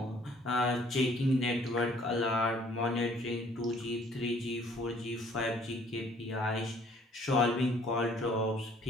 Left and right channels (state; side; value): normal; both; correlation 0.59